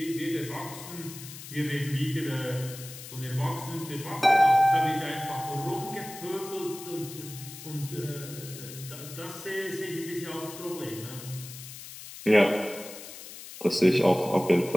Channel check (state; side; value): noise; left; hiss, 13 dB below the sound